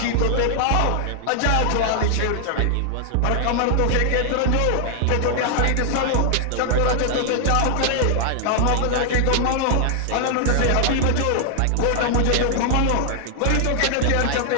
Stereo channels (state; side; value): different; both; correlation 0.00